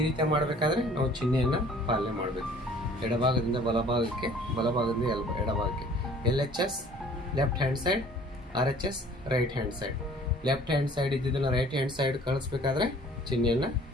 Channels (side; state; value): both; normal; correlation 0.52